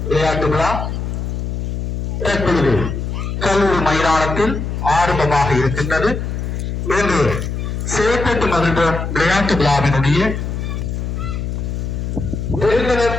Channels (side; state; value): left; noise; hum, 3 dB below the sound